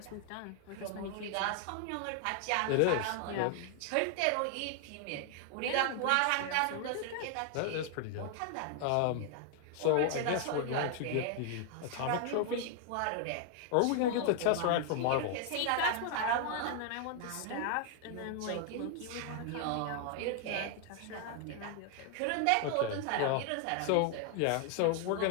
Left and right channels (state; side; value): different; both; correlation 0.00